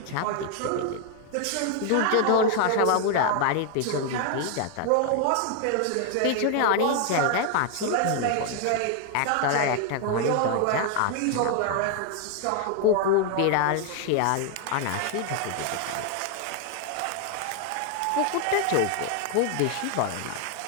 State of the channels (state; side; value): different; both; correlation 0.00